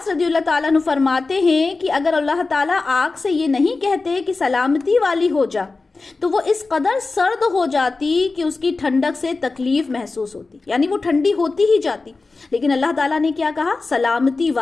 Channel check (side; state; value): right; quieter; 3.8 dB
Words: رضی اللہ تعالیٰ عنہ فرماتے ہیں کہ اگر اللہ تعالیٰ آگ سے یہ نہیں کہتے کہ سلامتی والی ہو جا تو وہ اس قدر سرد ہو جاتی کہ اس کی ٹھنڈک سے تکلیف محسوس ہوتی، یعنی وہ ٹھنڈی ہوتی ہی جاتی. لیکن اللہ تعالیٰ نے کیا کہا؟ سلامتی